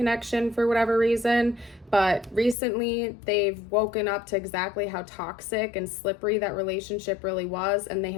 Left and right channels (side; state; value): right; drops out; at 2.6 s